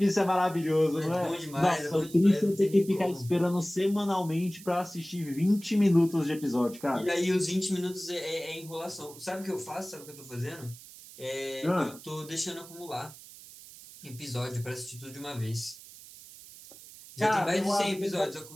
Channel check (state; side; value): noise; right; hiss, 18 dB below the sound